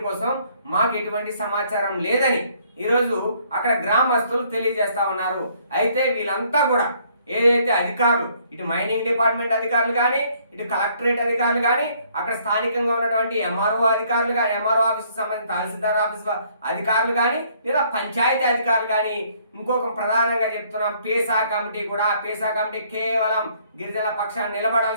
కోసం మాకు ఎటువంటి సమాచారం లేదని ఈరోజు అక్కడ గ్రామస్తులు తెలియజేస్తా ఉన్నారు. అయితే వీళ్ళంతా కూడా ఏదైతే అధికారులు, ఇటు మైనింగ్ డిపార్ట్మెంట్ అధికారులు కానీ, ఇటు కలెక్టరేట్ అధికారులు కానీ, అక్కడ స్థానికంగా ఉన్నటువంటి ఎంఆర్ఓ అధికారులు కానీ, ఎంఆర్ఓ ఆఫీస్కి సంబంధించిన తహసీల్దార్ ఆఫీస్ అధికారులు కానీ, లేదా పంచాయతీ అధికారులు కానీ, ఇంకొక ప్రధానంగా చెప్తున్నాం పేసా కమిటీ కూడా. పేసా కమిటీ కేవలం గిరిజనుల పక్షాన్ని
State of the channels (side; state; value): both; inverted; correlation -0.64